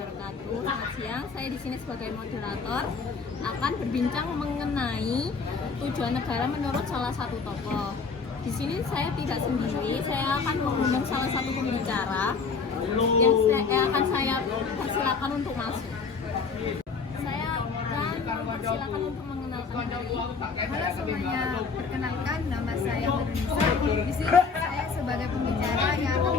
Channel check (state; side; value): quieter; right; 5.0 dB